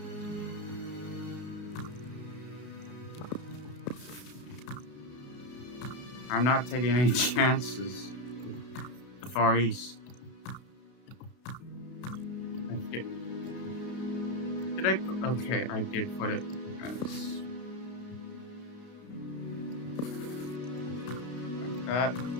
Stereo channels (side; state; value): right; late; 32 ms